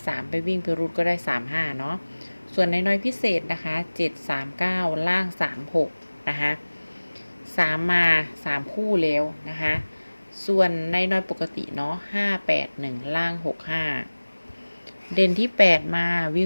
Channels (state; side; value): inverted; both; correlation -1.00